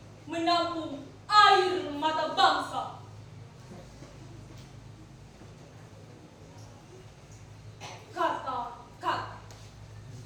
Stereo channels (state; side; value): identical; both; correlation 1.00